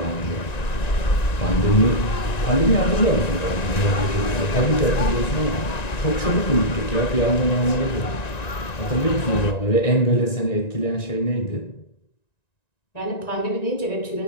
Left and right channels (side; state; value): right; late; 1.9 ms